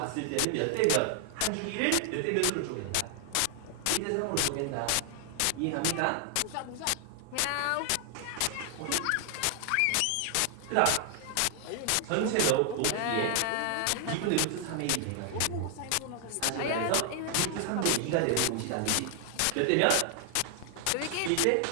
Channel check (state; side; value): different; both; correlation 0.00